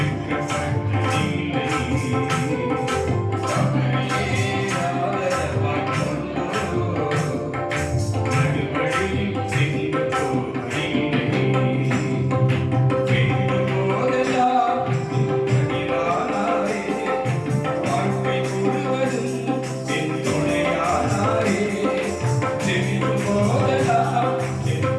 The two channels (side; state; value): both; identical; correlation 1.00